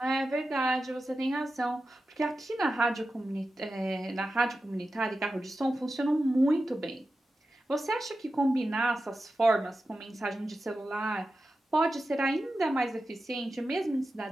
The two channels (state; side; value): normal; both; correlation 0.92